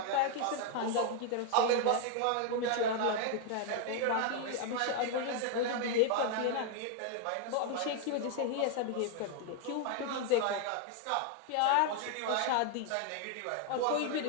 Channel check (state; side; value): different; both; correlation 0.00